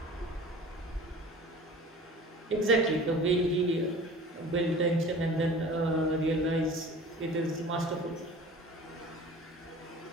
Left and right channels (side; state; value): both; normal; correlation 0.42